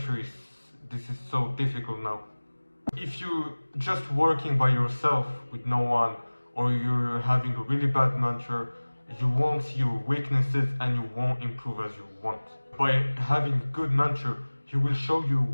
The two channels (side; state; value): both; inverted; correlation -1.00